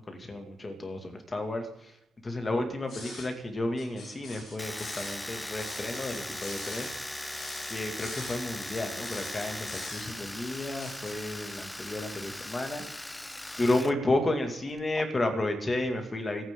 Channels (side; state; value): both; normal; correlation 0.91